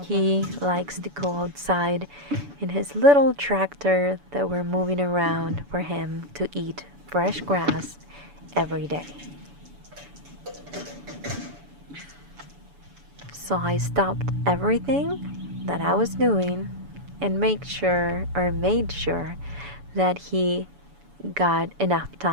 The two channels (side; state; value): left; late; 7.0 ms